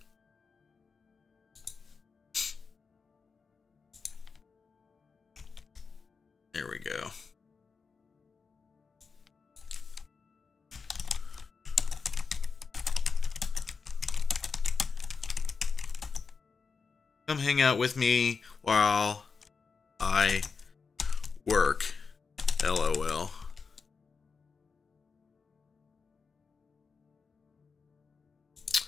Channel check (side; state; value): right; quieter; 5.0 dB